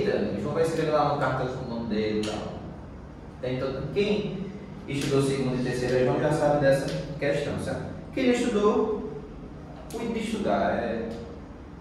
João vai escrever lá uma carta com o nome dele e tal. Então, quem estudou 2º e 3º João já sabe dessa questão, certo? Quem estudou, cuide de estudar, é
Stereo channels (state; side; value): identical; both; correlation 1.00